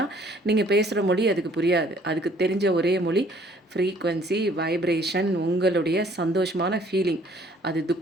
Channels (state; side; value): normal; both; correlation 0.59